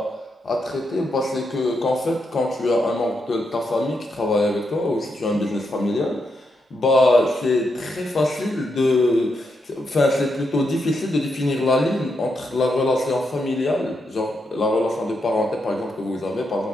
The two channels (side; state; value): both; normal; correlation 0.82